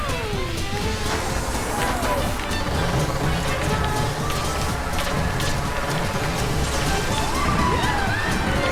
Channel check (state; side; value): identical; both; correlation 1.00